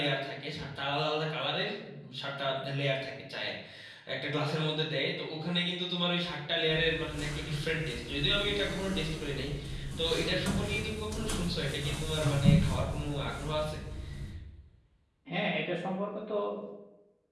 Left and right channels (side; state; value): both; identical; correlation 1.00